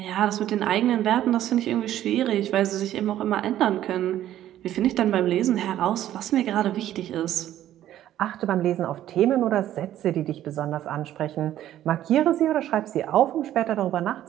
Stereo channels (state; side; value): quieter; left; 12.4 dB